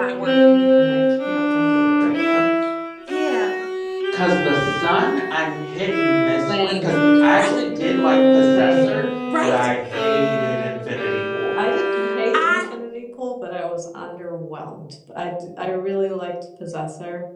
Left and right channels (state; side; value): identical; both; correlation 1.00